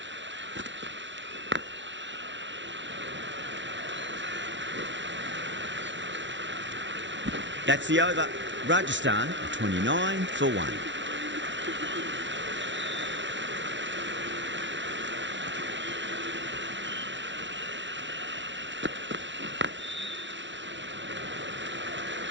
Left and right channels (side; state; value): left; late; 0.54 ms